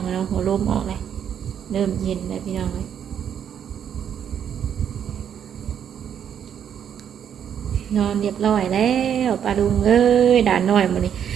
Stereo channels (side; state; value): left; quieter; 8.7 dB